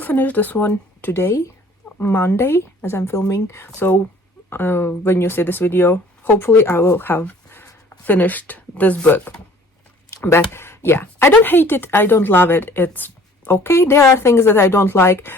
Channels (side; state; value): both; normal; correlation 0.52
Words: this one today, Monday, as I'm filming. So when you see this video, hopefully I will have finished this book. But yeah, I don't hate it, I don't love it, it's okay. There are things that I don't like.